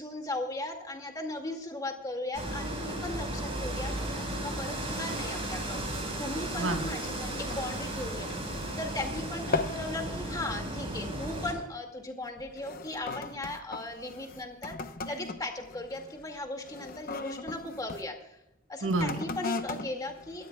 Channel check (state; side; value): normal; both; correlation 0.34